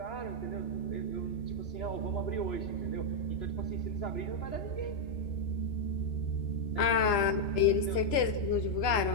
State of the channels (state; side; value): late; right; 2.9 ms